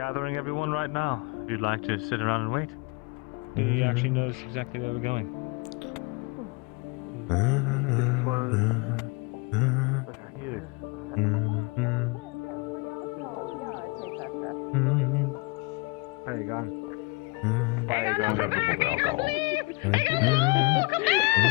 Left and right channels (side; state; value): right; quieter; 27.9 dB